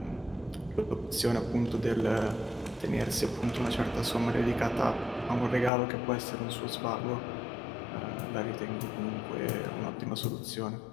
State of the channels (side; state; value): right; drops out; at 5.7 s